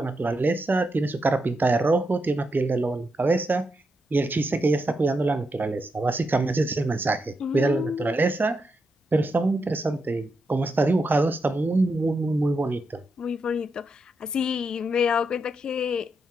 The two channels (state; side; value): normal; both; correlation 0.84